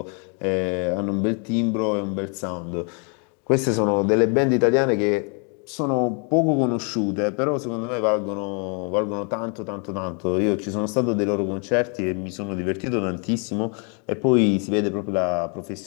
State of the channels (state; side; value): quieter; right; 37.7 dB